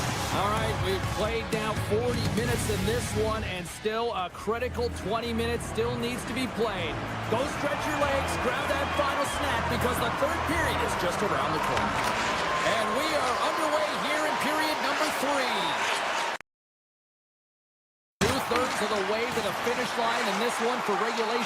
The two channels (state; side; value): identical; both; correlation 1.00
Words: All right, we've played now 40 minutes in this one, and still a critical 20 minutes still needs to be played. Go stretch your legs, grab that final snap, because the third period is just around the corner. And we are underway here in period number 3. Two-thirds of the way to the finish line in this one for